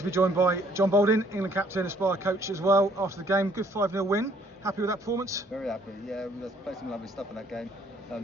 be joined by John Balding, England captain, Aspire coach as well. After the game, good 5-0 win. Happy with that performance? Very happy, yeah. We played some lovely stuff in that game,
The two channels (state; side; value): normal; both; correlation 0.62